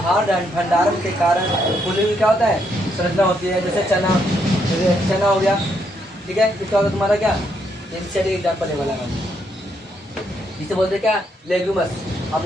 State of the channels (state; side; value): normal; both; correlation 0.75